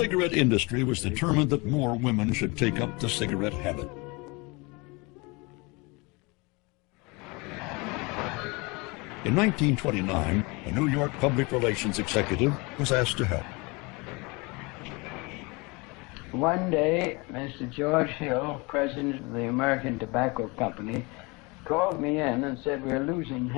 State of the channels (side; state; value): right; quieter; 27.0 dB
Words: industry was determined that more women should take up the cigarette habit. In 1929, a New York public relations executive was asked to help. One day, Mr. George Hill, president of the American Tobacco Company, called me in and said, we're losing